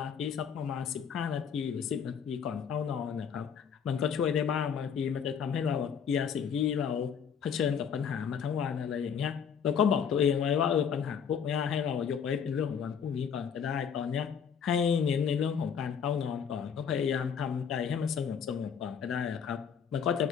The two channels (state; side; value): quieter; right; 7.3 dB